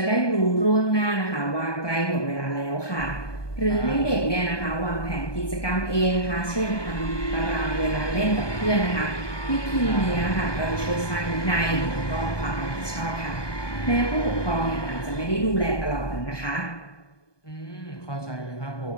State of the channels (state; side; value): late; right; 1.2 ms